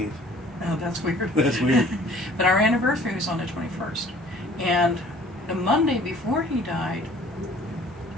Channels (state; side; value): normal; both; correlation 0.52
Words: Oh, that's weird. That's weird. But our anniversary was on the 21st. And the Monday before he died,